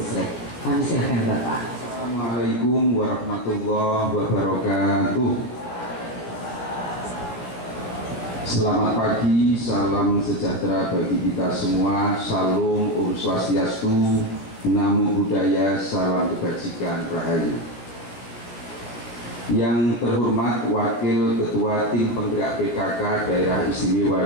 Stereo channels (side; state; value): right; late; 16 ms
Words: Kami silakan Bapak. Assalamualaikum warahmatullahi wabarakatuh. Selamat pagi, salam sejahtera bagi kita semua. Salam Om Swastiastu, Namo Buddhaya, salam kebajikan rahayu. Yang terhormat Wakil Ketua Tim Penggerak PKK Daerah